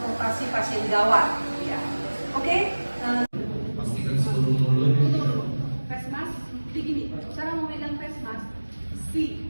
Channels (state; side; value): inverted; both; correlation -1.00